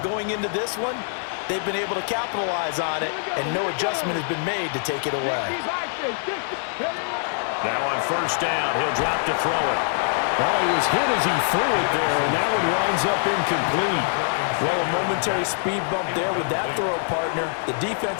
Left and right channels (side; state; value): right; silent; 61 dB below the other